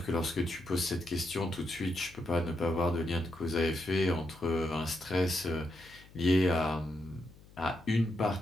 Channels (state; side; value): noise; left; hum, 23 dB below the sound